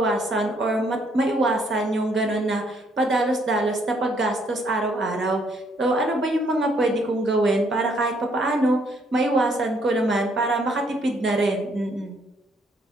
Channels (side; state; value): both; normal; correlation 0.68